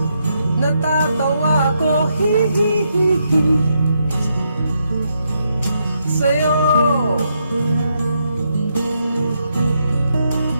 natatawa ko, hihihihi. Sa'yo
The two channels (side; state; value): both; inverted; correlation -0.79